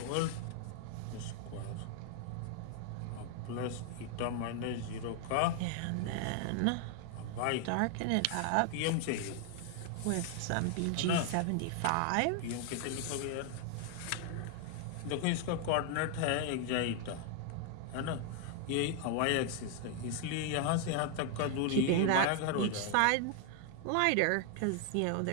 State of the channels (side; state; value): both; different; correlation 0.00